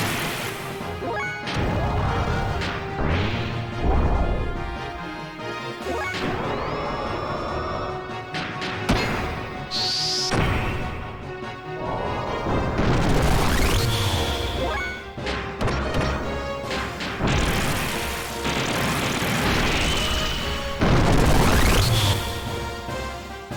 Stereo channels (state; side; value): identical; both; correlation 1.00